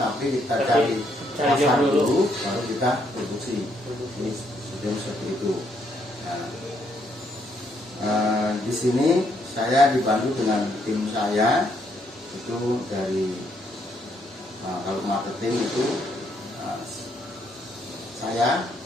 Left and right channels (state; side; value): normal; both; correlation 0.73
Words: kita cari pasar dulu baru kita produksi. Ini sudah seperti itu. Nah, di sini saya dibantu dengan tim saya, itu dari kalau marketing itu saya,